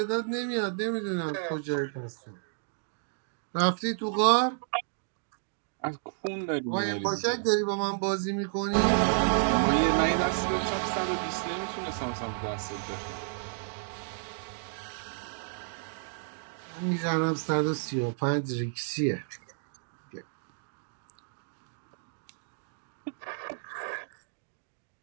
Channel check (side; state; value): left; silent; digital silence